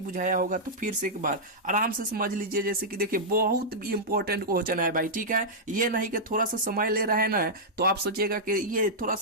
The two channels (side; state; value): both; normal; correlation -0.09